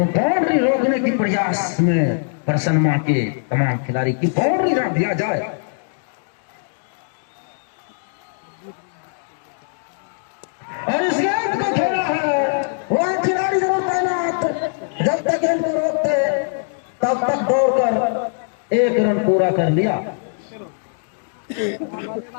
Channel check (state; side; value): silent; right; digital silence